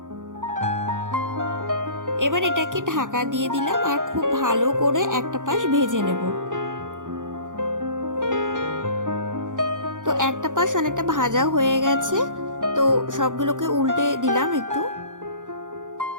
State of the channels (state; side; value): late; left; 0.87 ms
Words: এবার এটাকে ঢাকা দিয়ে দিলাম আর খুব ভালো করে একটা পাশ ভেজে নেব। তো একটা পাশ অনেকটা ভাজা হয়ে গেছে, তো সবগুলোকে উল্টে দিলাম একটু।